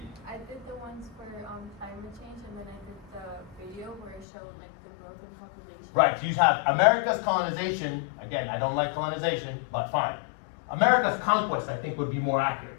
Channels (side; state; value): right; drops out; at 4.2 s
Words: I did the ones for climate change, and then I did the video where it showed like the growth in population. Right, you have America's colonization. Again, I don't like colonization, but fine. America's conquest, I think, would be more